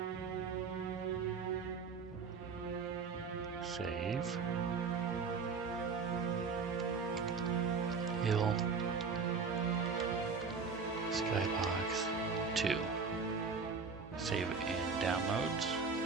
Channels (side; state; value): left; quieter; 5.1 dB